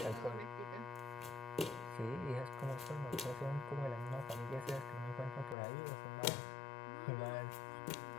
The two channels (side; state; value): right; drops out; at 5.6 s